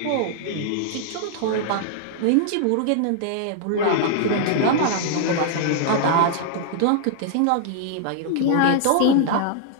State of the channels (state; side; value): different; both; correlation -0.01